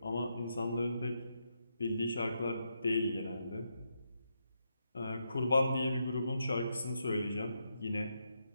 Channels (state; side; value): inverted; both; correlation -0.82